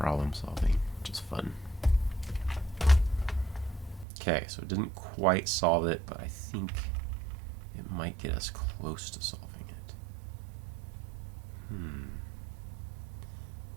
solving, which is fun. Okay, so it didn't quite solve it, but I think it might get us close to solving it.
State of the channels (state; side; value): drops out; left; at 4.0 s